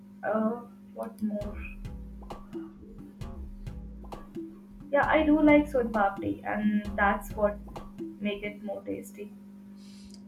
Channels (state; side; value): identical; both; correlation 1.00